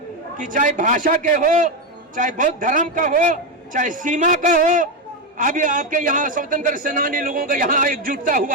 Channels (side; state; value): both; normal; correlation 0.09